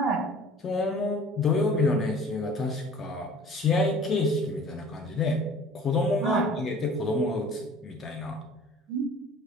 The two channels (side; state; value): both; normal; correlation 0.47